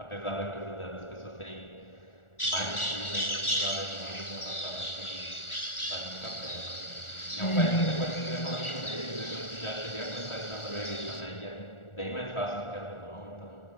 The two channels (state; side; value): late; right; 1.4 ms